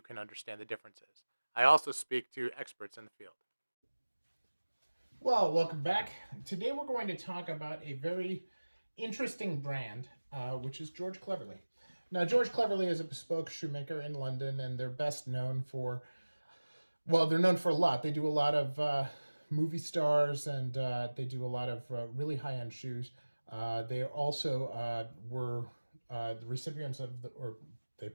understand the differences. I also speak to experts in the field. Well, welcome back. Today we're going to talk about a very interesting brand, which is George Cleverley. Now, George Cleverley is a bespoke shoemaker in London, and they're best known for, well, they're known for a lot. They do a lot of movie stars, and they do a lot of really high-end shoes. They also were the recipients of, or they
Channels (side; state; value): both; inverted; correlation -1.00